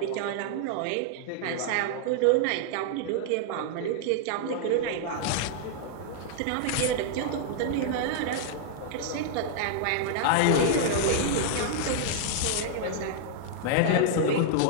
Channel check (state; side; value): different; both; correlation -0.01